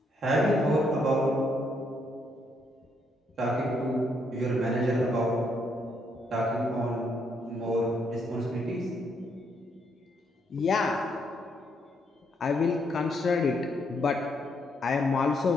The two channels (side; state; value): both; normal; correlation 0.74